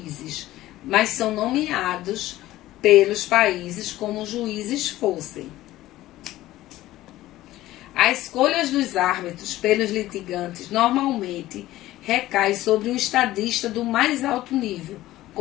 mas são nomeados pelos países como juízes fossem. As escolhas dos árbitros pelos litigantes normalmente recai sobre um estadista do mais alto nível,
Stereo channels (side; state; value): right; quieter; 15.8 dB